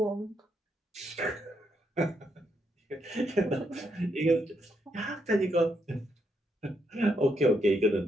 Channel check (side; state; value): both; normal; correlation 0.78